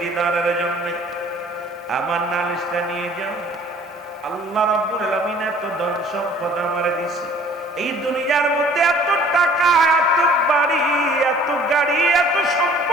দিদারের জন্য আমার নালিশটা নিয়ে যাও। আল্লাহ রাব্বুল আলামিন এত ধন সম্পদ আমারে দিছে, এই দুনিয়ার মধ্যে এত টাকা, এত বাড়ি, এত গাড়ি, এত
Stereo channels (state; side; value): normal; both; correlation 0.52